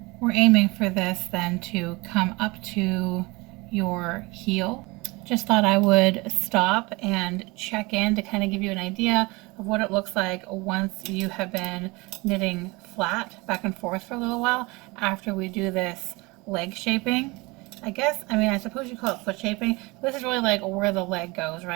We're aiming for this then to come up to your heel. Just thought I would stop and check in to kind of give you an idea of what it looks like once you have been knitting flat back and forth for a little while after we do this leg shaping. I suppose you call it foot shaping. This is really like where the leg goes,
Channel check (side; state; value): left; quieter; 24.4 dB